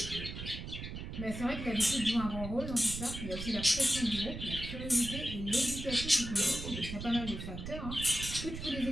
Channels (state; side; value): noise; right; rumble, 7 dB below the sound